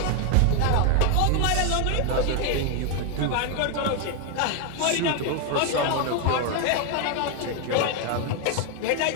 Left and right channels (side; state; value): both; different; correlation 0.01